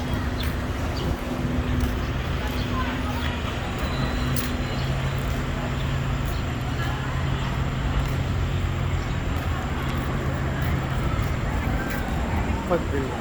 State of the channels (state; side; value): identical; both; correlation 1.00